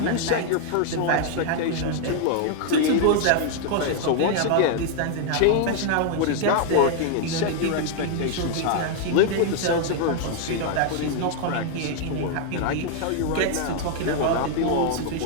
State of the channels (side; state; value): both; different; correlation 0.00